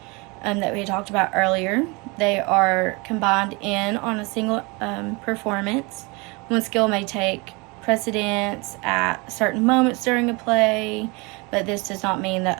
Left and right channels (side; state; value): left; quieter; 27.5 dB